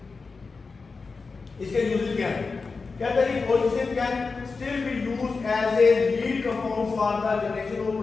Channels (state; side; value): quieter; right; 4.4 dB